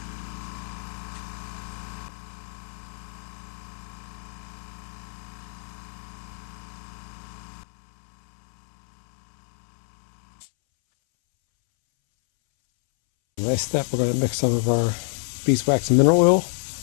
Next step, we're going to mix some of our beeswax and mineral oil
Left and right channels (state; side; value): silent; right; 61 dB below the other